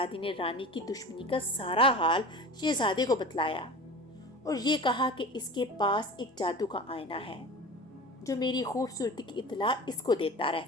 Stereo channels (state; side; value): normal; both; correlation 0.35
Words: نے رانی کی دشمنی کا سارا حال شہزادے کو بتلایا اور یہ کہا کہ اس کے پاس ایک جادو کا آئینہ ہے جو میری خوبصورتی کی اطلاع اس کو دیتا